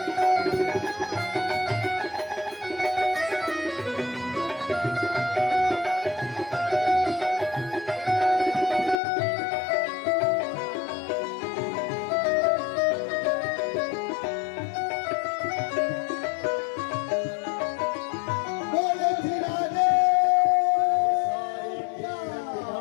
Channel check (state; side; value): drops out; right; at 9.0 s